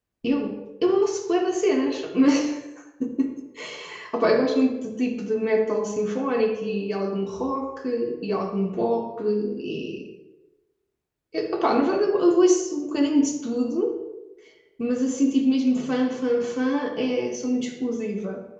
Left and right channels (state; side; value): identical; both; correlation 1.00